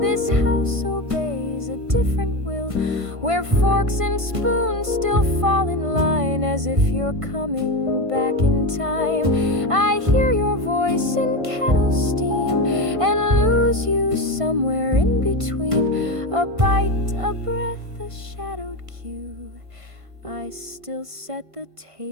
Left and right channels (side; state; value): left; late; 1.5 ms